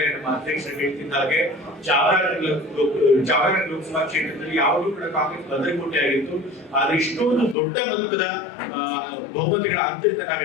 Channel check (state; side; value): drops out; right; at 7.6 s